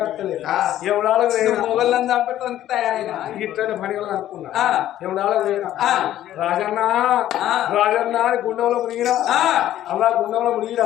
రోజులు మొగళ్ళని చంపడానికి తయారైనా ఇట్లనే పనిగా అనుకున్నా. రాజన్న రాజన్న గుండంలో మునిగిరా. అలా గుండంలో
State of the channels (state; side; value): quieter; right; 12.7 dB